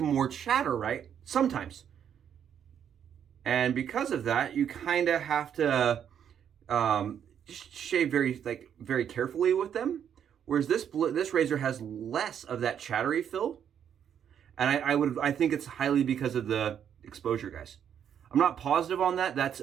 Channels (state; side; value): quieter; left; 8.8 dB